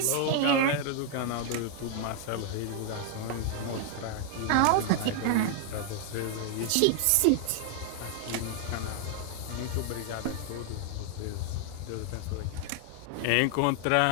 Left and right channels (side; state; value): both; different; correlation 0.00